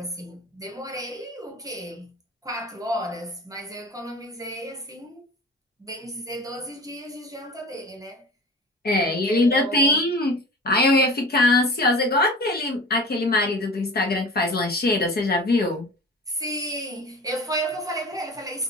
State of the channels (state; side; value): normal; both; correlation 0.38